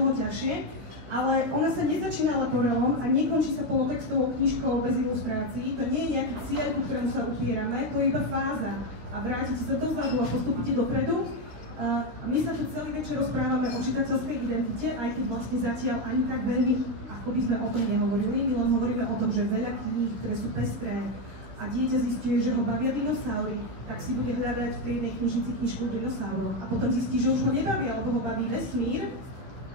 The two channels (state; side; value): late; left; 16 ms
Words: ťažšie. Ale ona sa nezačína leporelom a nekončí sa polotextovou knižkou bez ilustrácií. To nie je nejaký cieľ, ku ktorému sa upierame, to je iba fáza. A vrátite sa dozadu a postupíte dopredu. My sa tu celý večer rozprávame o čitateľskej identite, aj keď vlastne zatiaľ ani tak veľmi, ako by sme o tom nehovorili. My len hovoríme o tom, že veľa kníh, ktoré sú pestré a dieťa zistuje, že ho bavia dinosaury, tak si bude hľadať v tej jednej knižnici knižku o dinosauroch. A potom zistí, že už ho nebavia, alebo ho baví vesmír.